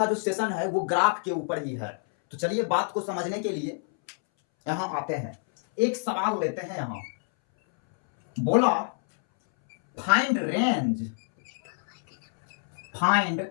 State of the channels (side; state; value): right; silent; 60 dB below the other